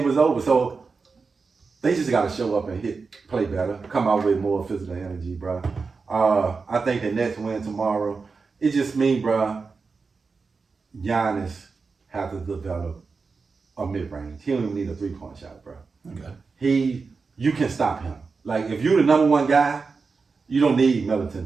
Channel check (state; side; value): quieter; left; 4.6 dB